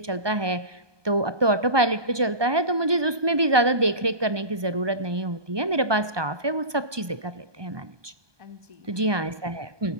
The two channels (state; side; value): late; left; 1.2 ms